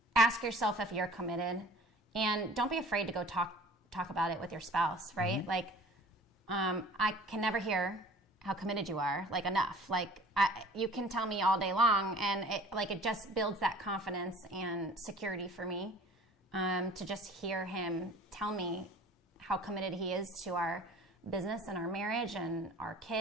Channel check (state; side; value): normal; both; correlation 0.47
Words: Ask yourself if you're committed, and don't be afraid to go talk about it with your spouse, right? Mm-hmm. Like, I can never hear how committed you are, like, enough. Like, you can tell me all day long, and it just builds that confidence and security for me, to just hear him tell me how committed he is to our business and our marriage and our